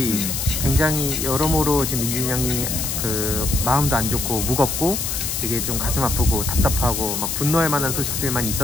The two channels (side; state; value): left; noise; hiss, 2 dB below the sound